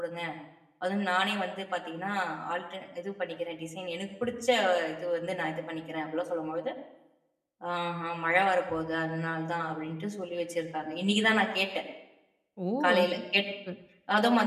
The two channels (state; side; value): identical; both; correlation 1.00